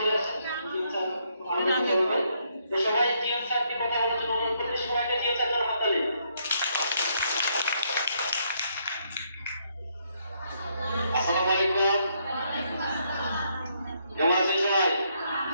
আসছেন, টিএম স্যার আমাদের করবে। তো সবাই টিএম স্যারকে কথা বলার জন্য অনুরোধ করতে, সবাইকে টিএম স্যার জন্য হাত তালি। আসসালামু আলাইকুম, কেমন আছেন সবাই?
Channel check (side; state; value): both; inverted; correlation -0.74